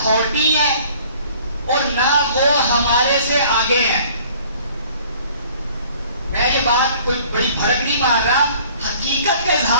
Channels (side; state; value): both; inverted; correlation -0.53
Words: ہے, اور نہ وہ ہمارے سے آگے ہیں. میں یہ بات کوئی بڑی بھڑک نہیں مار رہا, حقیقت کا